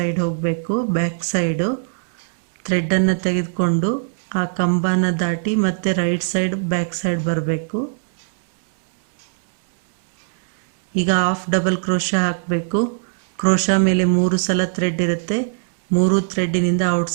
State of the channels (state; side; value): silent; left; digital silence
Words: ಹೋಗಬೇಕು, ಬ್ಯಾಕ್ ಸೈಡು. ಥ್ರೆಡ್ಡನ್ನು ತೆಗೆದುಕೊಂಡು ಆ ಕಂಬನ ದಾಟಿ ಮತ್ತೆ ರೈಟ್ ಸೈಡ್ ಬ್ಯಾಕ್ ಸೈಡ್ ಬರಬೇಕು. ಈಗ ಹಾಫ್ ಡಬಲ್ ಕ್ರೋಶ ಹಾಕಬೇಕು. ಕ್ರೋಶ ಮೇಲೆ 3 ಸಲ ಥ್ರೆಡ್ ಇರುತ್ತೆ. 3 ಥ್ರೆಡ್ಡಿನಿಂದ